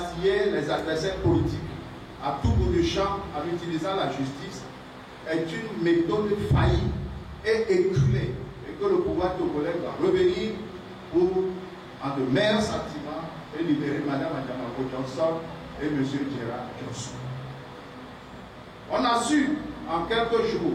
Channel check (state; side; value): identical; both; correlation 1.00